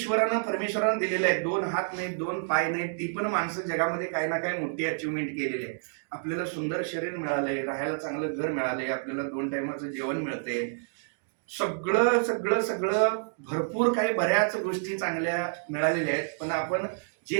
परमेश्वरानं दिलेलं आहे. 2 हात नाहीत, 2 पाय नाहीत, ती पण माणसं जगामध्ये काही ना काही मोठी अचिव्हमेंट केलेली आहे. आपल्याला सुंदर शरीर मिळालंय, राहायला चांगलं घर मिळालंय, आपल्याला 2 टायमाचं जेवण मिळते, सगळं सगळं सगळं भरपूर काही बऱ्याच गोष्टी चांगल्या मिळालेल्या आहेत. पण आपण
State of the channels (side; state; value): left; silent; digital silence